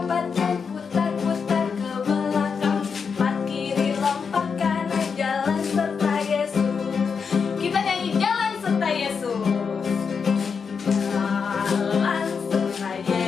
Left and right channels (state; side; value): quieter; right; 5.8 dB